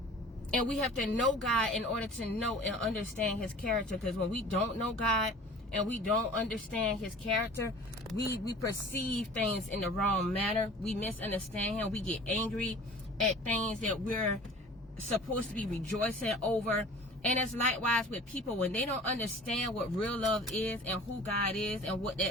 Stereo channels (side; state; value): both; normal; correlation 0.44